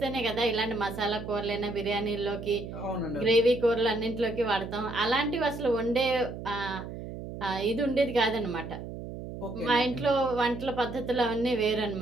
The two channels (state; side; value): noise; right; hum, 9 dB below the sound